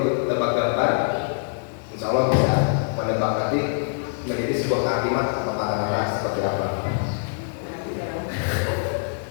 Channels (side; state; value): right; silent; digital silence